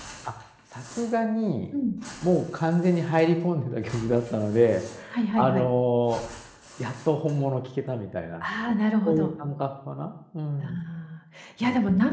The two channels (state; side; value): identical; both; correlation 1.00